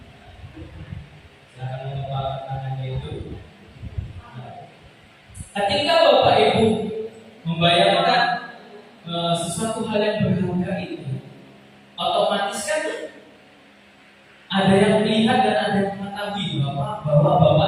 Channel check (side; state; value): both; identical; correlation 1.00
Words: Silakan mengembangkan tangannya itu. Ketika Bapak Ibu membayangkan sesuatu hal yang berharga itu, otomatis kan ada yang melihat dan ada yang mengetahui bahwa